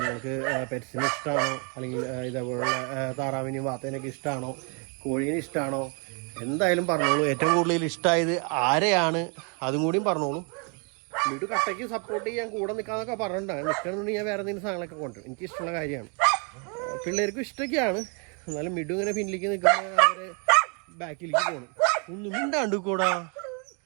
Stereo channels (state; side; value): quieter; left; 36.5 dB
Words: നിങ്ങൾക്ക് പെറ്റ്സിന് ഇഷ്ടമാണോ, അല്ലെങ്കിൽ ഇതേപോലുള്ള താറാവിനെയും വാത്തേനൊക്കെ ഇഷ്ടമാണോ, കോഴീനെ ഇഷ്ടമാണോ, എന്തായാലും പറഞ്ഞോളൂ. ഏറ്റവും കൂടുതൽ ഇഷ്ടമായത് ആരെയാണ് അതും കൂടിയും പറഞ്ഞോളൂ. മിഡു കട്ടയ്ക്ക് സപ്പോർട്ട് ചെയ്യാൻ കൂടെ നിൽക്കാന്നൊക്കെ പറഞ്ഞിട്ടുണ്ടാകും. നിൽക്കണമെന്നുണ്ടെങ്കിൽ ഞാൻ വേറെ എന്തെങ്കിലും സാധനങ്ങളൊക്കെ കൊണ്ടുവരും. എനിക്ക് ഇഷ്ടമുള്ള കാര്യമാണ്. പിള്ളേർക്കും ഇഷ്ടമൊക്കെയാണ്. എന്നാലും മിഡു ഇങ്ങനെ പിന്നിലേക്ക് നിൽക്കുമ്പോൾ അവർ ബാക്കിലേക്ക് പോകണം. ഒന്നും മിണ്ടാണ്ട് കൂടാ.